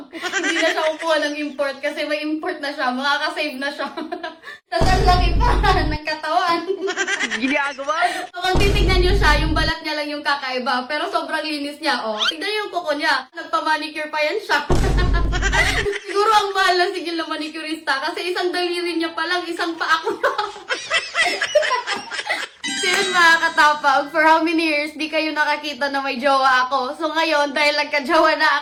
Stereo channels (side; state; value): both; identical; correlation 1.00